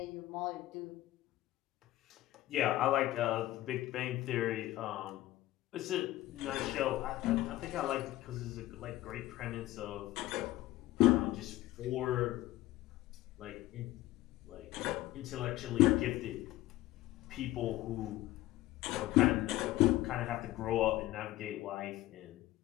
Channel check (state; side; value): quieter; right; 16.0 dB